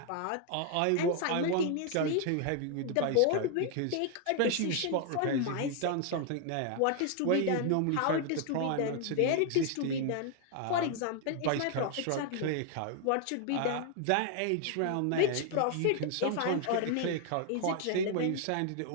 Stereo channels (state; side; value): different; both; correlation 0.00